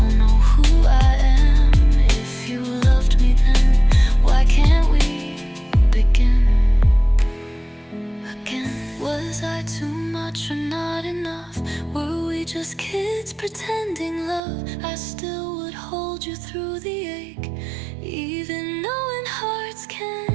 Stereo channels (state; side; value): drops out; left; at 14.4 s